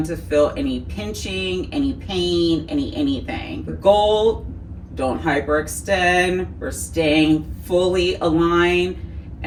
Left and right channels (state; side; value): identical; both; correlation 1.00